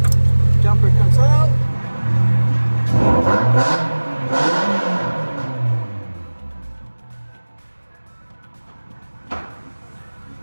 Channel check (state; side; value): inverted; both; correlation -1.00